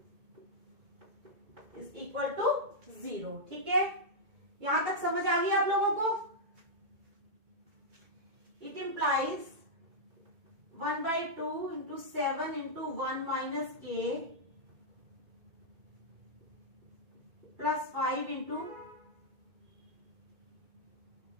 इज इक्वल टू 0, ठीक है। यहां तक समझ आ गई आप लोगों को? It implies 1/2 into 7 into 1 minus k plus 5 into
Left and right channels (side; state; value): left; late; 2.2 ms